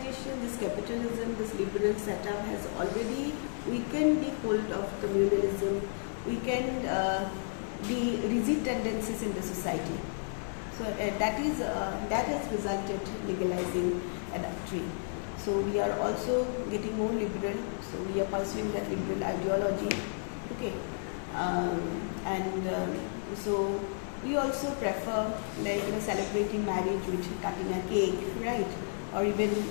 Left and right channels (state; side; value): silent; right; digital silence